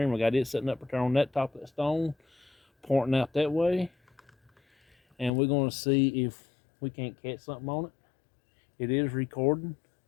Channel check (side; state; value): right; drops out; at 5.3 s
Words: I got it setting up right on that top of that stone, pointing out that way. And we're going to see if we can't catch something on it. It is recording.